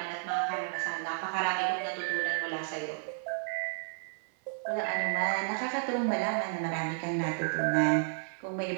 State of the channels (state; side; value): silent; left; 56 dB below the other